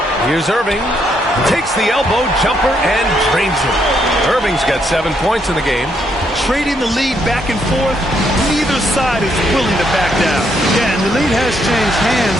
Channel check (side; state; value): both; normal; correlation 0.74